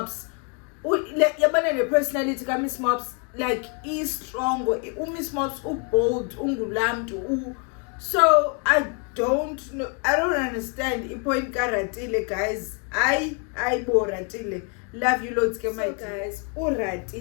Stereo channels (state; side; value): quieter; right; 38.0 dB